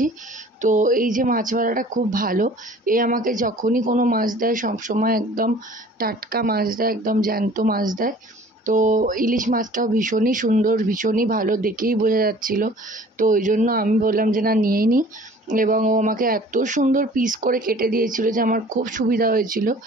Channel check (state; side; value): normal; both; correlation 0.49